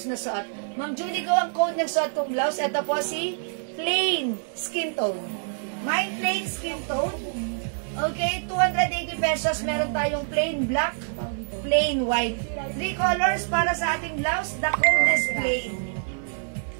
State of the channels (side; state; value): left; silent; digital silence